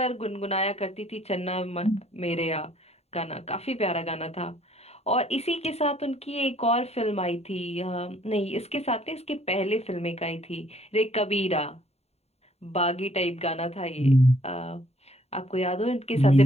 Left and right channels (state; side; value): late; right; 0.30 ms